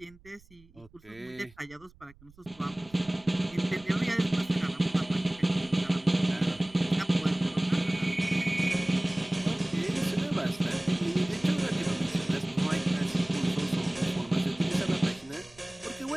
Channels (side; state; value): right; noise; rumble, 26 dB below the sound